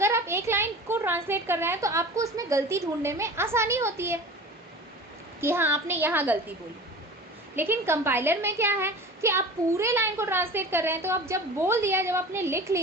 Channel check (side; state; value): both; normal; correlation 0.37